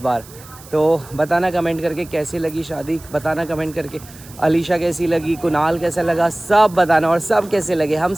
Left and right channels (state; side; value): noise; right; hiss, 20 dB below the sound